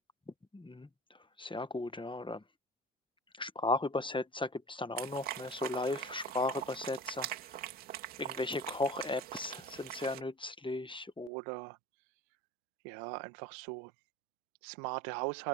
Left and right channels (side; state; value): left; drops out; at 11.3 s